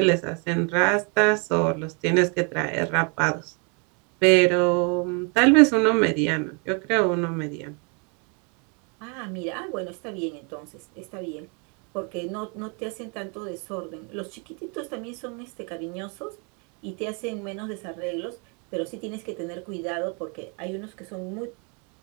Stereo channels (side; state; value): left; quieter; 35.4 dB